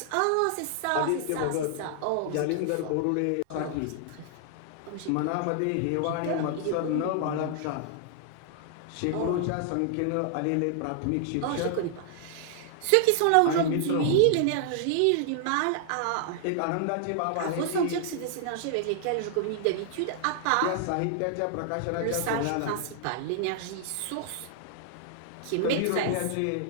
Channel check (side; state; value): both; different; correlation -0.01